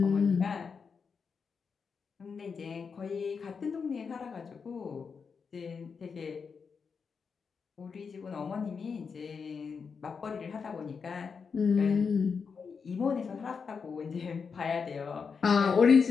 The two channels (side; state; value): right; quieter; 5.7 dB